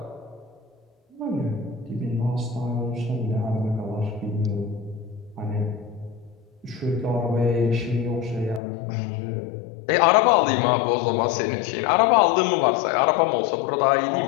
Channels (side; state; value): right; drops out; at 8.6 s